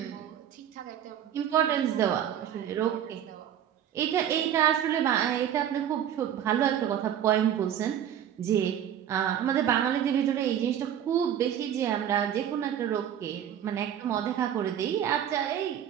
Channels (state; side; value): quieter; left; 9.9 dB